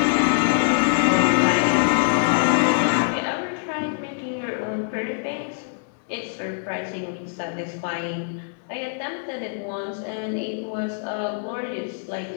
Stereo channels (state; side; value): silent; right; digital silence